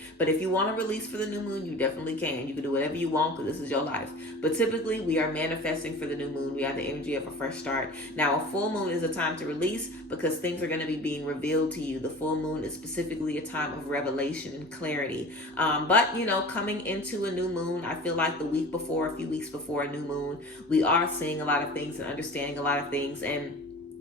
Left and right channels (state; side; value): normal; both; correlation 0.39